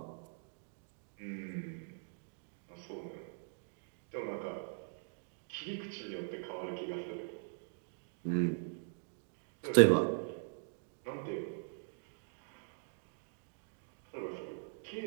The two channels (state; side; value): silent; left; digital silence